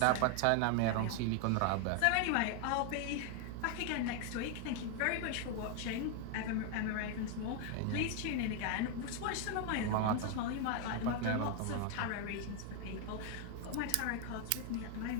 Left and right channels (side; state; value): both; different; correlation 0.00